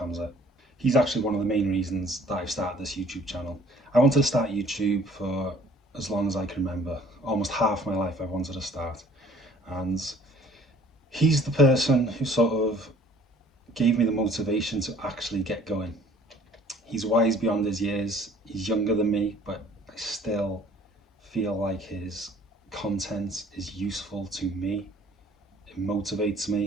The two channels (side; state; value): both; normal; correlation 0.55